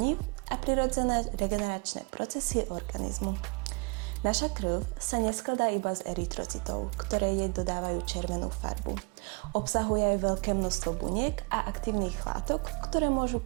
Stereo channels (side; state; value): left; quieter; 32.1 dB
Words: a prirodzené regeneračné procesy organizmu. Naša krv sa neskladá iba z erytrocitov, ktoré jej dodávajú červenú farbu. Obsahuje aj veľké množstvo buniek a aktívnych látok, ktoré môžu